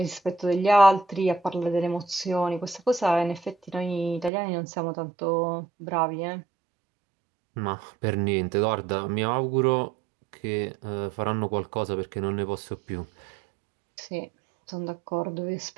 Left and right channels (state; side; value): drops out; left; at 4.3 s